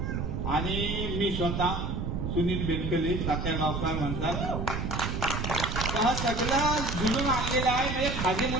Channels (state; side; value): noise; right; rumble, 2 dB below the sound